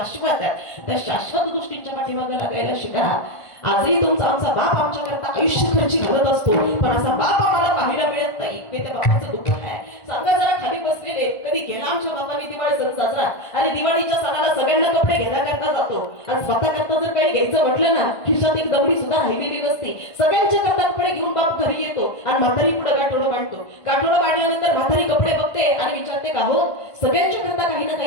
आहेत त्या शाश्वत गोष्टींच्या पाठीमागे लागायला शिका. आजही तुमचा आमचा बाप आमच्याकरता आयुष्य खर्ची घालत असतो, पण असा बाप आम्हाला पाहायला मिळत नाही. हे त्या बापाचं दुःख आहे. सांगा जरा खाली बसलेले कधी केला आमच्या बापाने दिवाळी सण साजरा? आणि दिवाळीच्या सणाला सगळ्यांना कपडे घेण्याकरता जातो आणि स्वतः करता जर काही घ्यायचं म्हटलं ना खिशात एक दमडी सुद्धा राहिलेली नसते. सगळ्यांच्या करता कपडे घेऊन बाप घरी येतो आणि म्हातारी पुढे गाठोडं बांधतो. गाठोडं बांधल्यानंतर म्हातारी कपडे बघते आणि विचारते का हो सगळ्यांच्या करता काही ना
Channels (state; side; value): late; right; 1.5 ms